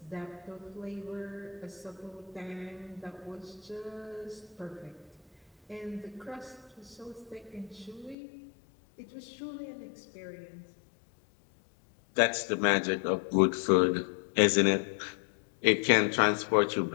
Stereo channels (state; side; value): drops out; right; at 8.2 s